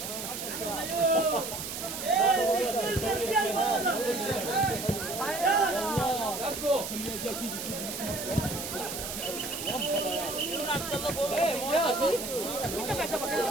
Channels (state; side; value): noise; right; hiss, 6 dB below the sound